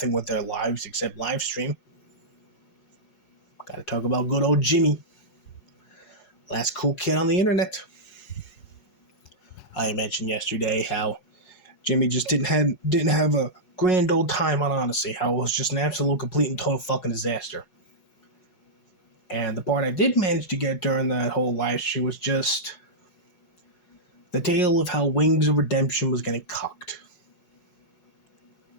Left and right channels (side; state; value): right; late; 4.8 ms